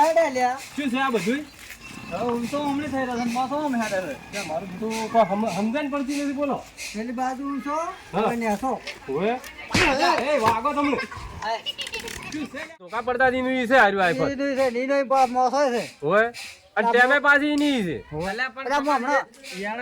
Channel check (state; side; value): identical; both; correlation 1.00